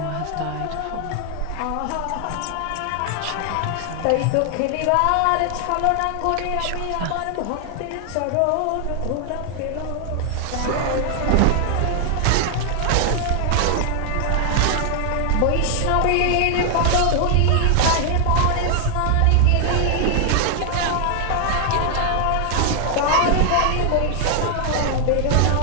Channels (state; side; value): different; both; correlation 0.00